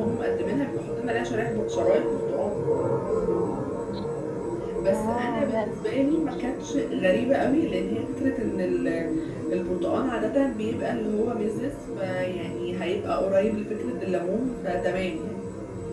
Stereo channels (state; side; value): identical; both; correlation 1.00